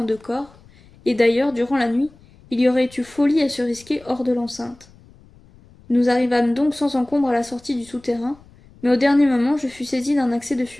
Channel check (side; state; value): left; noise; rumble, 26 dB below the sound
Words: deux corps, et d'ailleurs, durant la nuit, il y aurait eu folie à se risquer hors de l'enceinte. Nous arrivâmes donc sans encombre à la sortie du souterrain, mais au dernier moment je fus saisi d'un accès de